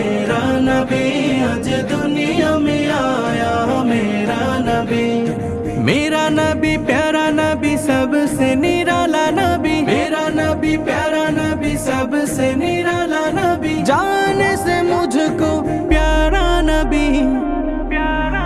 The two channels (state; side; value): identical; both; correlation 1.00